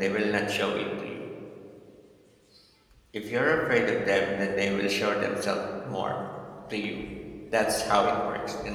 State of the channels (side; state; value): both; identical; correlation 1.00